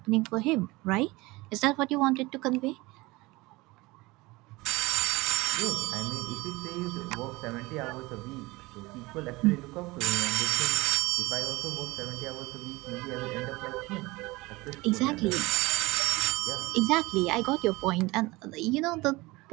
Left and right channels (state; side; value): quieter; left; 21.9 dB